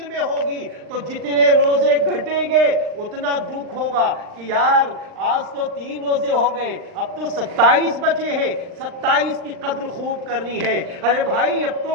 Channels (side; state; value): left; late; 39 ms